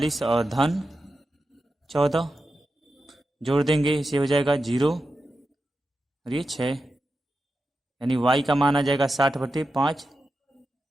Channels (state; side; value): normal; both; correlation 0.90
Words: और धन 14, जोड़ देंगे, इसे हो जाएगा 0 और ये 6, यानी y का मान आ जाएगा 60/5,